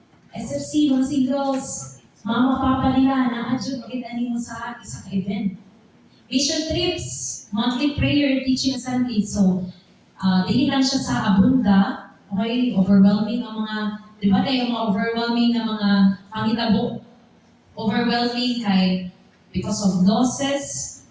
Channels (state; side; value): identical; both; correlation 1.00